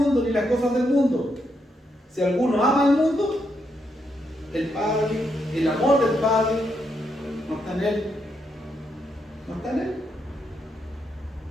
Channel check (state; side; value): normal; both; correlation 0.80